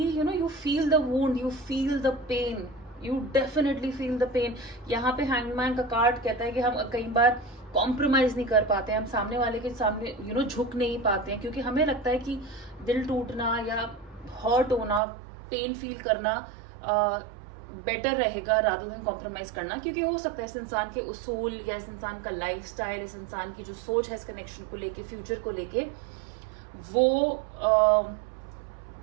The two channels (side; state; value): left; drops out; at 15.0 s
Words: you feel the wound, you feel the pain, you definitely feel the pain. यहाँ पे हैंगमैन का कार्ड कहता है कि हम कई बार कॉम्प्रोमाइज नहीं कर पाते, हम सामने वाले के सामने झुक नहीं पाते हैं, क्योंकि हमें लगता है कि दिल टूटना या हर्ट होना, पेन फील करना बेटर रहेगा रादर देन कॉम्प्रोमाइज करना। क्योंकि हो सकता है इस इंसान के उसूल या इस इंसान का लाइफस्टाइल, इस इंसान की जो सोच है इस कनेक्शन को लेके, फ्यूचर को लेके,